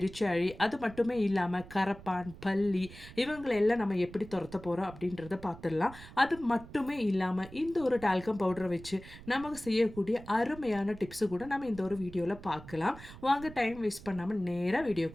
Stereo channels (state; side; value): noise; right; rumble, 17 dB below the sound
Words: அது மட்டுமே இல்லாமல் கரப்பான், பல்லி இவங்களெல்லாம் நம்ம எப்படி துரத்த போகிறோம் அப்படின்றத பார்த்துடலாம். அது மட்டுமே இல்லாமல் இந்த ஒரு டால்கம் பவுடரை வச்சு நமக்கு செய்யக்கூடிய அருமையான டிப்ஸு கூட நம்ம இந்த ஒரு வீடியோவில் பார்க்கலாம். வாங்க டைம் வேஸ்ட் பண்ணாமல் நேராக